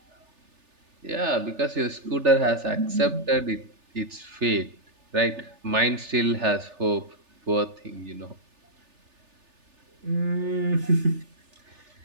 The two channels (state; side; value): late; left; 3.4 ms